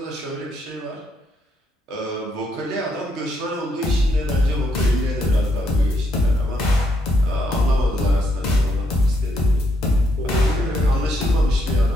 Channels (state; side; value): normal; both; correlation 0.75